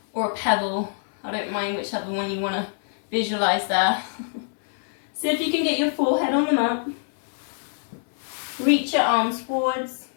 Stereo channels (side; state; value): right; silent; 62 dB below the other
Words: or a pebble. I don't mind whichever one you want to visualize there. See if you can get your forehead on the mat. Reach your arms forwards.